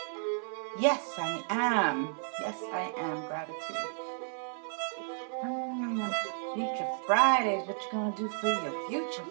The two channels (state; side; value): silent; left; 56 dB below the other